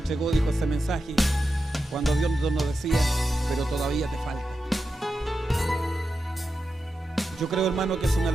dijo ese mensaje, cuando Dios nos decía, pero todavía te falta. Yo creo, hermano, que es una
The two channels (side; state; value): both; normal; correlation 0.90